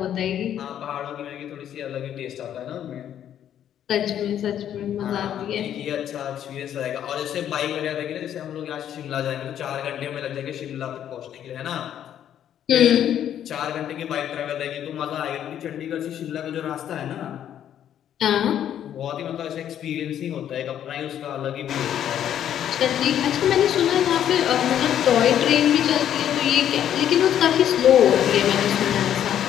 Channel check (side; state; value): right; quieter; 10.3 dB